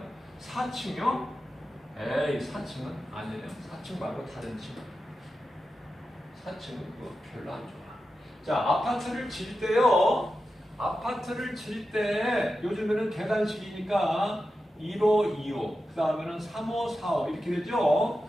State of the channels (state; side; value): normal; both; correlation 0.91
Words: 4층이요? 에이 4층은 아니에요. 4층 말고 다른 층. 4층은 그거 별로 안 좋아. 자, 아파트를 질 때요. 아파트를 질 때 요즘에는 계단식이니까 1호, 2호, 그 다음에는 3호, 4호 이렇게 되죠.